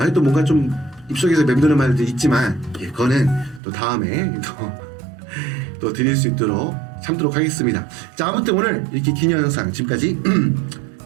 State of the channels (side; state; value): left; drops out; at 3.6 s